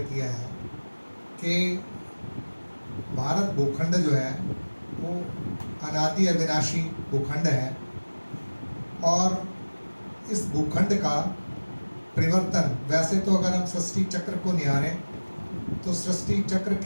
किया है कि भारत भूखंड जो है वो अनादि अविनाशी भूखंड है, और इस भूखंड का परिवर्तन, वैसे तो अगर हम सृष्टि चक्र को निहारें तो सृष्टि चक्र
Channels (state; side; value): inverted; both; correlation -1.00